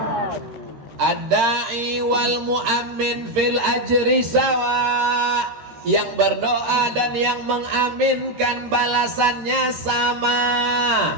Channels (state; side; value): late; left; 13 ms